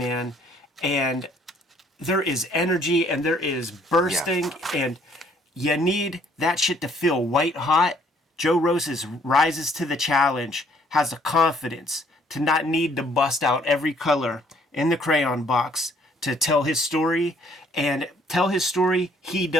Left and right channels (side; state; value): both; normal; correlation 0.62